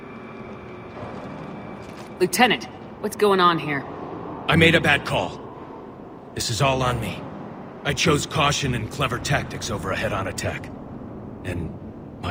Lieutenant, what's going on here? I made a bad call. This is all on me. I chose caution and clever tactics over a head-on attack. And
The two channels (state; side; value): identical; both; correlation 1.00